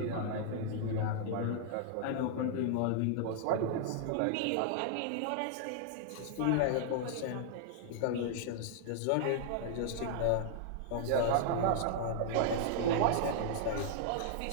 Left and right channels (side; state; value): both; different; correlation -0.01